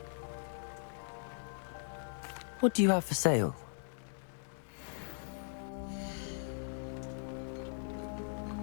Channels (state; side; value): silent; right; digital silence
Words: What do you have for sale?